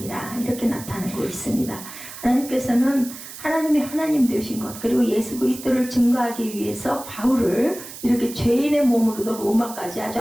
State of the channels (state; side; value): noise; right; hiss, 13 dB below the sound